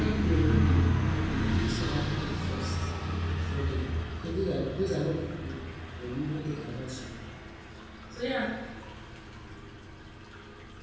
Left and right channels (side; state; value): both; identical; correlation 1.00